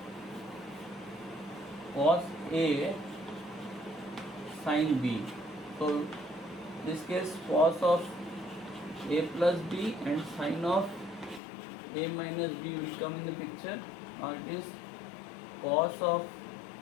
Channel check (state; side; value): drops out; right; at 11.4 s